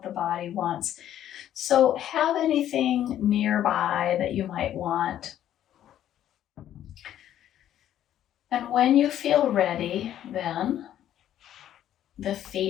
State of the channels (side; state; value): right; quieter; 11.4 dB